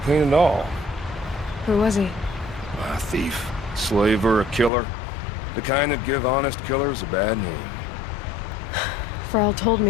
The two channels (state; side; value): drops out; right; at 4.7 s